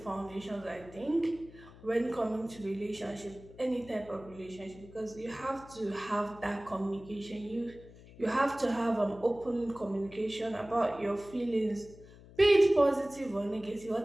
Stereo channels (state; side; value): noise; left; hum, 20 dB below the sound